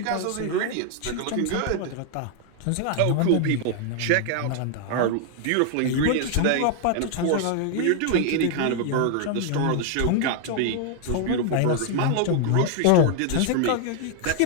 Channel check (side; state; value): both; different; correlation 0.00